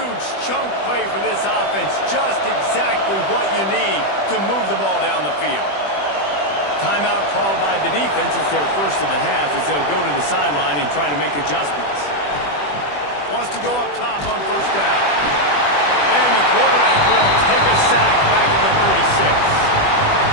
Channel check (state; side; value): late; right; 20 ms